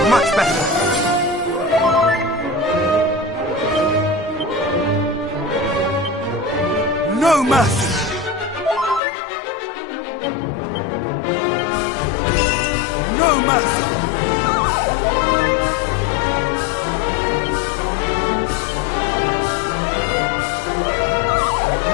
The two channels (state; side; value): drops out; right; at 9.0 s